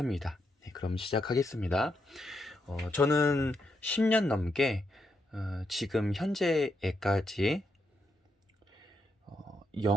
네, 그럼 시작하겠습니다. 저는 10년 넘게 지금 현재에까지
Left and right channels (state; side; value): normal; both; correlation 0.81